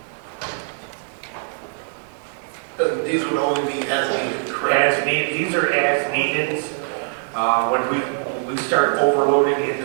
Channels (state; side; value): silent; left; digital silence